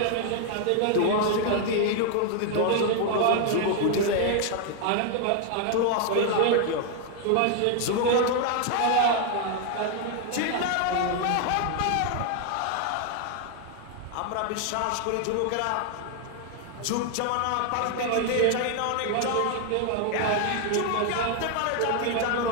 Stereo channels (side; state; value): both; different; correlation 0.01